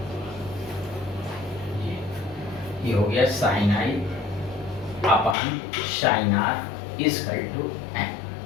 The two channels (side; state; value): right; drops out; at 5.4 s